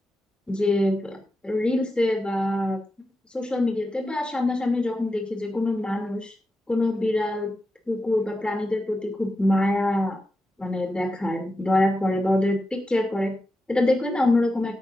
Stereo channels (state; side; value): normal; both; correlation 0.90